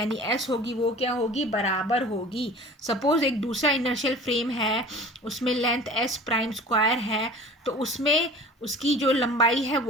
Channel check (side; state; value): both; normal; correlation 0.42